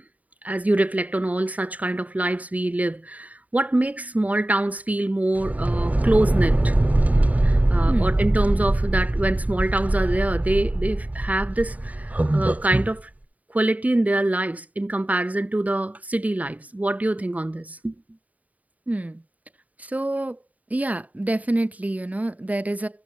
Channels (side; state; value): left; late; 0.072 ms